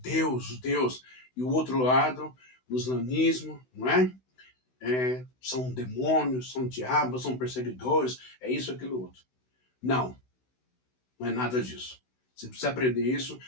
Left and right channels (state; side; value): late; right; 16 ms